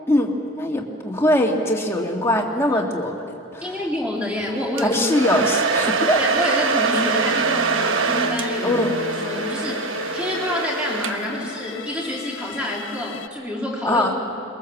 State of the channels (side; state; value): both; normal; correlation 0.31